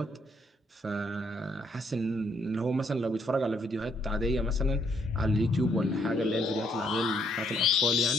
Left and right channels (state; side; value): normal; both; correlation 0.70